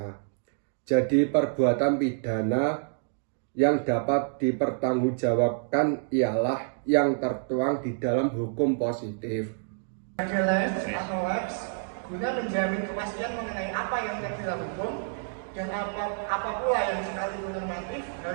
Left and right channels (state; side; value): silent; left; digital silence